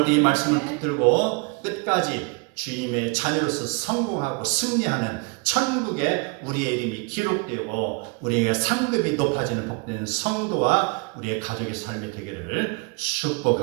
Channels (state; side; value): quieter; left; 31.0 dB